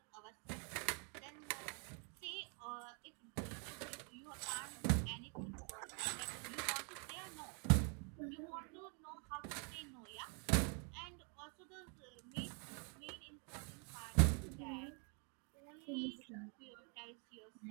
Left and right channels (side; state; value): left; quieter; 38.4 dB